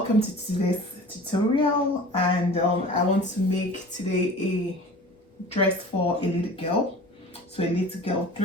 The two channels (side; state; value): both; normal; correlation 0.41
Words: to today's tutorial, and I want to make today a dress for a little girl, so a little girl